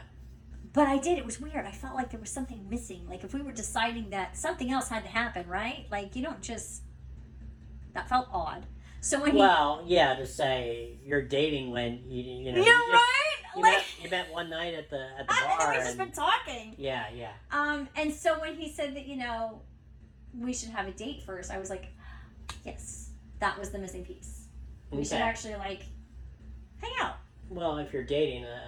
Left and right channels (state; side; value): identical; both; correlation 1.00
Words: But I did. It was weird. I felt like there was something missing. Like if we were deciding that something else had to happen, right? Like you don't just. That felt odd. So when to say you're dating when you know. Yeah, right. You met one night at the bar. And then we've just been talking. Yeah. And so when he said that we should have a date first, I was like, yes, that was the missing piece. We should actually hang out. Well, if you're dating,